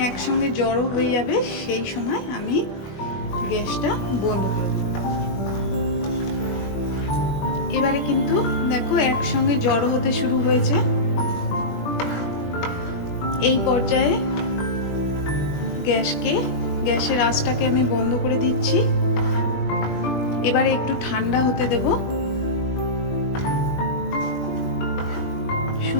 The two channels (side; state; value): right; late; 20 ms